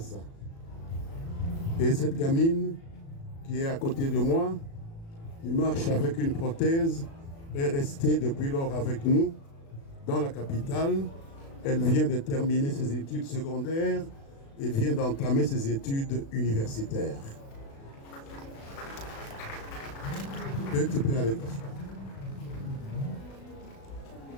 Et cette gamine qui est à côté de moi, qui marche avec une prothèse, est restée depuis lors avec nous dans la capitale. Elle vient de terminer ses études secondaires et vient d'entamer ses études universitaires. Et tu peux aller t'asseoir.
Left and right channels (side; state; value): right; late; 36 ms